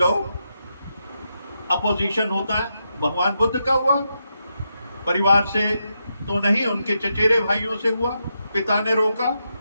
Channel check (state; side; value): inverted; both; correlation -0.84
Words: अपोजिशन होता है, भगवान बुद्ध का हुआ, परिवार से तो नहीं, उनके चचेरे भाइयों से हुआ, पिता ने रोका,